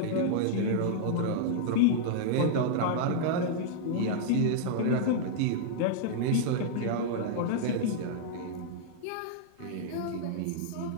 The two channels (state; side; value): different; both; correlation -0.01